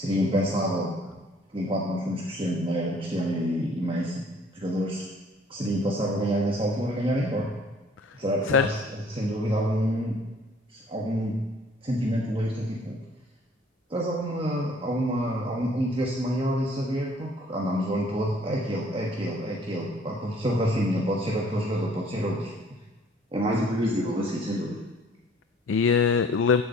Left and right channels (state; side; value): normal; both; correlation 0.57